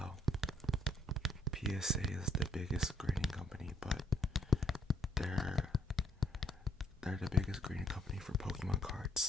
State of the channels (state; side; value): normal; both; correlation 0.68